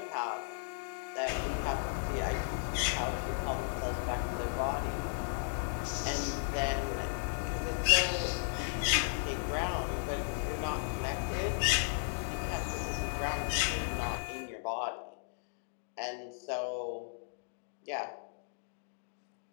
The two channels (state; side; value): silent; right; digital silence